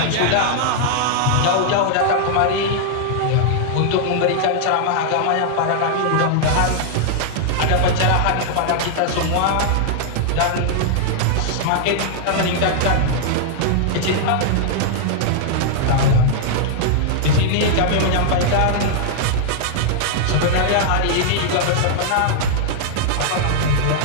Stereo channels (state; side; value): different; both; correlation -0.01